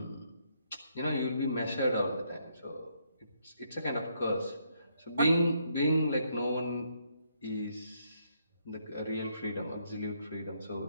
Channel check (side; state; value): both; inverted; correlation -0.73